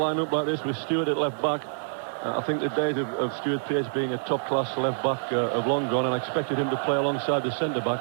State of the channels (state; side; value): silent; left; 60 dB below the other